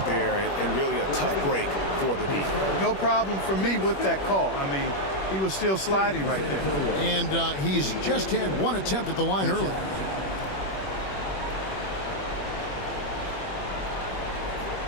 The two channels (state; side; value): late; right; 21 ms